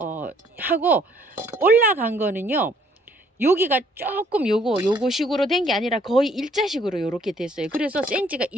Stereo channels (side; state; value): both; normal; correlation 0.63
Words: 하고 올라간 거는요, 여기가 조금 요거 식으로 된 게 아니라 거의 일자식으로 요렇게 됐어요. 그래서 센치가